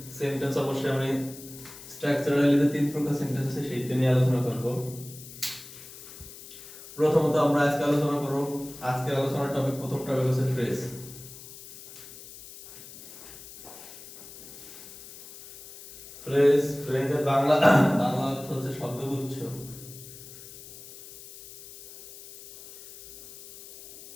সেন্টেন্স অবশ্যই আমি স্ট্রাকচারালি যে তিন প্রকার সেন্টেন্স আছে সেইটা নিয়ে আলোচনা করব। প্রথমত আমরা আজকে আলোচনা করব, আজকের আলোচনার টপিক, প্রথম টপিক হচ্ছে ফ্রেজ। ফ্রেজের বাংলা অর্থ হচ্ছে শব্দগুচ্ছ।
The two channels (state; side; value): noise; left; hiss, 16 dB below the sound